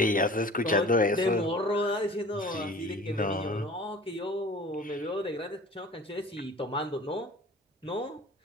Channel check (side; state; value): both; normal; correlation 0.43